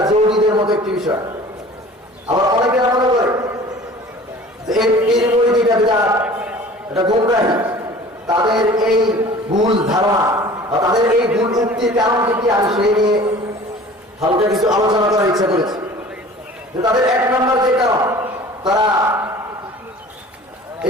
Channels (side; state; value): both; normal; correlation 0.45